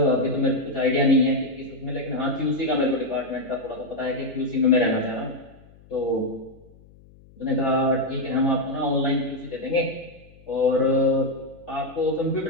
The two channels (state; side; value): noise; left; hum, 25 dB below the sound